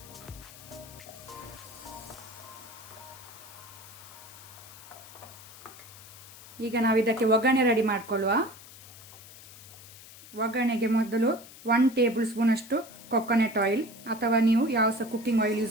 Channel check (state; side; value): noise; left; hiss, 18 dB below the sound